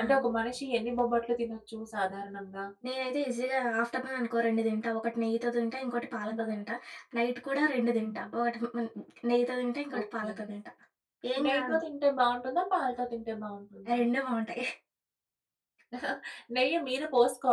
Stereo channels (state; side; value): identical; both; correlation 1.00